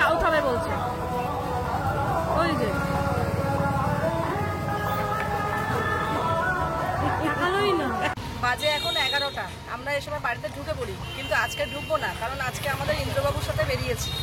খাবে বলছে। ওই যে ভালোই না। বাজে এখন 11টা, আমরা এই সময় বাড়িতে ঢুকে পড়ি, কিন্তু আজকে ঢুকবো না, কারণ আজকে আমাদের ইন্দ্রবাবুর সাথে বেরিয়েছি।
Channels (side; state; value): both; identical; correlation 1.00